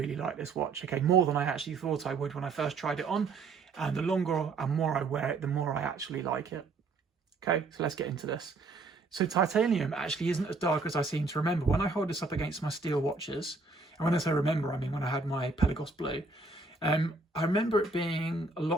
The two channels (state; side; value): quieter; left; 3.8 dB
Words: like this watch. Okay, more than I actually thought I would when I first tried it on. And the longer and more I wear it, the more I actually like it. Okay, so let's get into this. So titanium actually isn't as dark as I seem to remember. When I hold this up against my steel watches, and when I say remember, I mean when I had my Pelagos Blue, I remember it being a